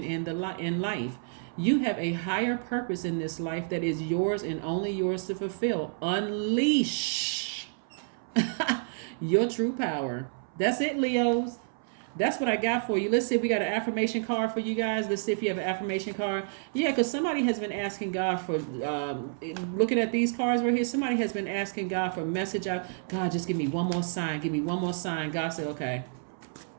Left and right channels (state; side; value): silent; left; 58 dB below the other